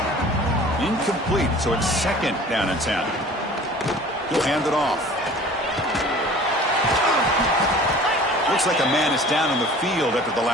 Incomplete, so it's 2nd down and 10. He'll hand it off. Looks like a man is down on the field after the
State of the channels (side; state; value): both; normal; correlation 0.46